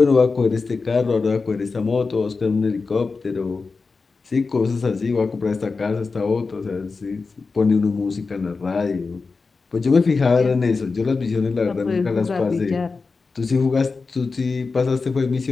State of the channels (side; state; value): right; quieter; 4.3 dB